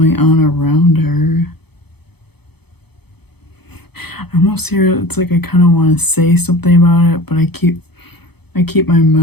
on around her. I almost hear it's like I kind of want to say something about it, but I keep my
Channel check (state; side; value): late; right; 0.98 ms